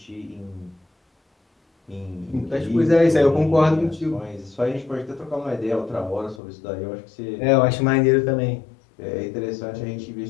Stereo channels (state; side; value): drops out; right; at 6.4 s